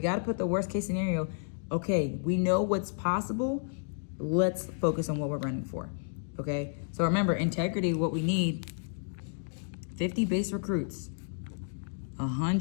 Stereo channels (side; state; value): right; silent; digital silence